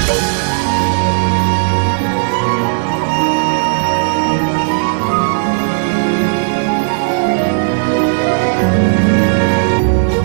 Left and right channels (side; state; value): left; silent; 62 dB below the other